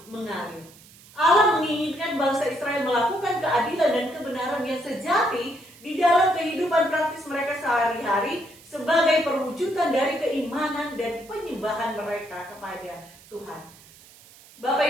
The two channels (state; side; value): noise; right; hiss, 23 dB below the sound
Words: mengalir. Allah menginginkan bangsa Israel melakukan keadilan dan kebenaran yang sejati di dalam kehidupan praktis mereka sehari-hari sebagai perwujudan dari keimanan dan penyembahan mereka kepada Tuhan. Bapak